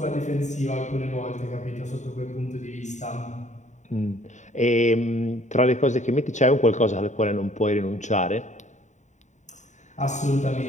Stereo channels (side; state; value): right; late; 0.34 ms